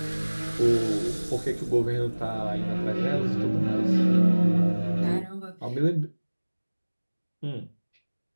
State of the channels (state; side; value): inverted; both; correlation -1.00